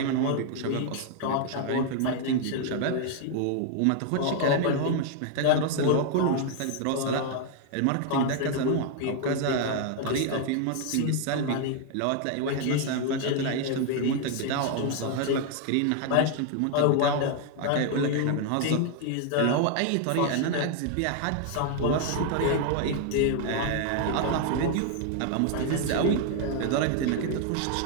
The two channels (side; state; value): both; different; correlation 0.00